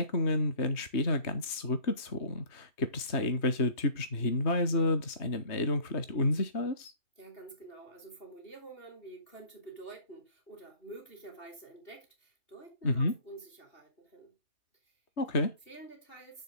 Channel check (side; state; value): right; late; 3.2 ms